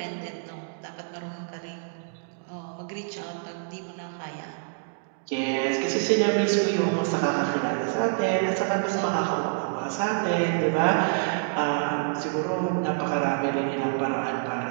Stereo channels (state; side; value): silent; left; digital silence